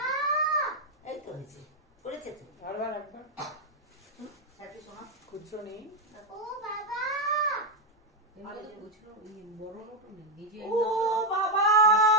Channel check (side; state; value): both; normal; correlation 0.03